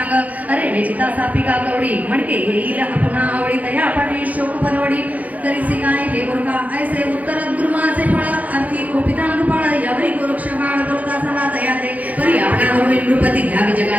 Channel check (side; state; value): left; late; 0.075 ms